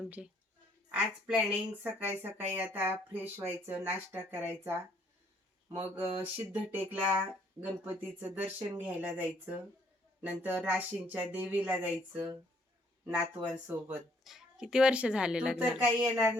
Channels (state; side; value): normal; both; correlation 0.66